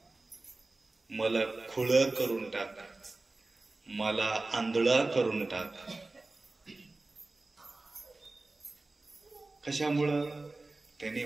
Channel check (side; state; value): left; quieter; 3.2 dB